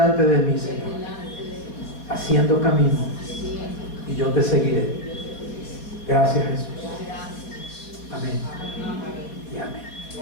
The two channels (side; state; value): right; late; 4.1 ms